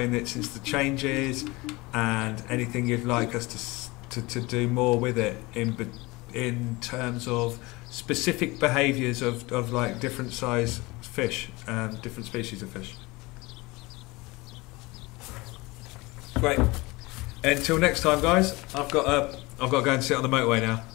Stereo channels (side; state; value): right; quieter; 22.9 dB